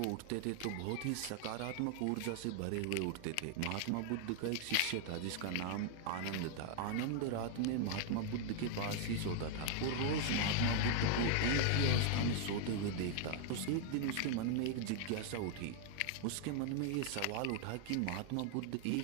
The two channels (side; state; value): both; different; correlation 0.00